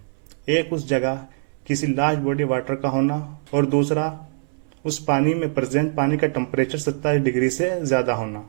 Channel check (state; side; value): silent; left; 62 dB below the other